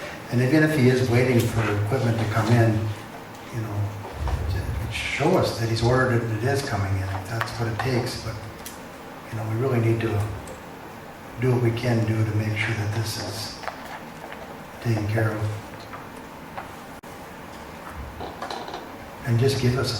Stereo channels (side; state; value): both; identical; correlation 1.00